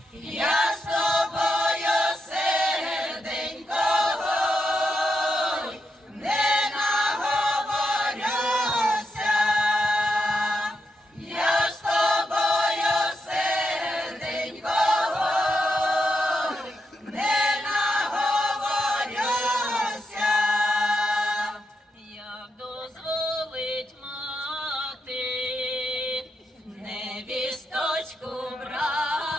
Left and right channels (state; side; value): normal; both; correlation 0.83